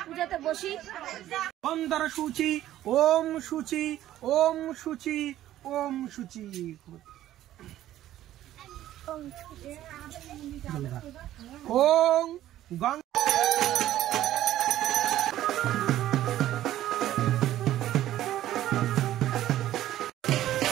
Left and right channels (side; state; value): left; quieter; 13.3 dB